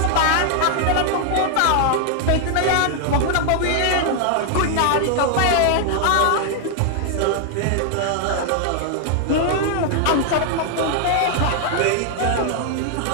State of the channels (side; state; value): both; different; correlation 0.00